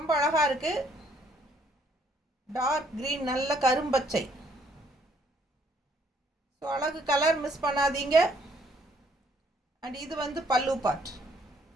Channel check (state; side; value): normal; both; correlation 0.67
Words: அழகாக இருக்குது. டார்க் க்ரீன், நல்ல கரும்பச்சை. ஸோ அழகு கலர், மிஸ் பண்ணாதீங்க. அண்ட் இது வந்து பல்லு பார்ட்.